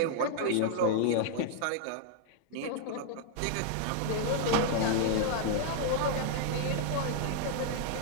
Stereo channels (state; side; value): different; both; correlation 0.00